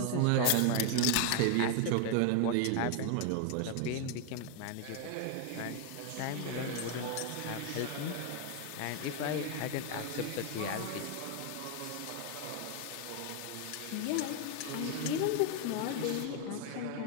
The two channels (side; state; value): both; different; correlation 0.01